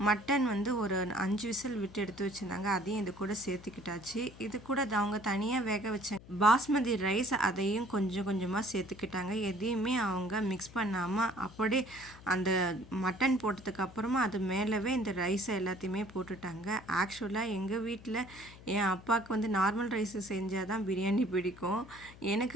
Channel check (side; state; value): left; noise; hum, 19 dB below the sound